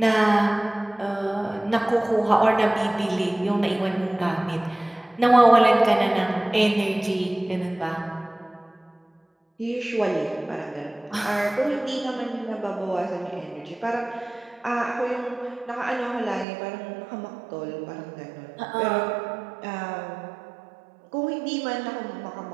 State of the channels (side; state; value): left; drops out; at 16.4 s